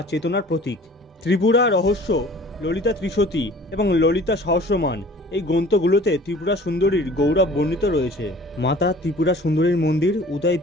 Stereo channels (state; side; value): normal; both; correlation 0.48